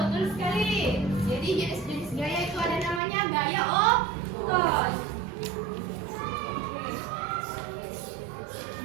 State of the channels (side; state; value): left; drops out; at 3.0 s